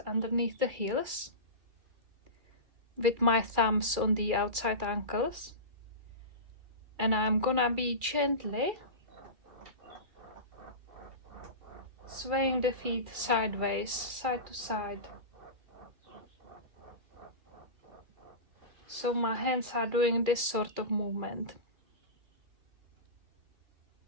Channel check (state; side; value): late; left; 2.3 ms